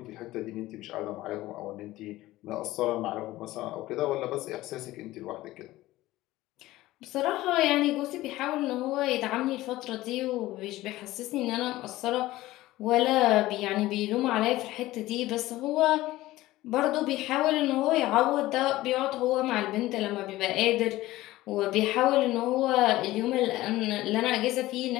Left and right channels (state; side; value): quieter; right; 17.0 dB